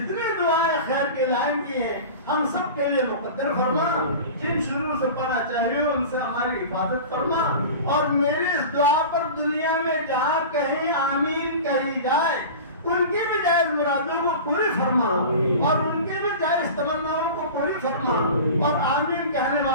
دعائیں خیر کے لائن کی ہیں ہم سب کے لیے مقدر فرما. جن شروع سے پڑھنا چاہیے ان سے ہماری حفاظت فرما. اور میری اس دعا پر دنیا میں جہاں کہیں آمین کہی جائے ان کی بھی جائز مرادوں کو پوری فرما, اور ان کی بھی جائز تمناؤں کو پوری فرما, اور آمین کہنے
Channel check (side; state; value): both; inverted; correlation -0.33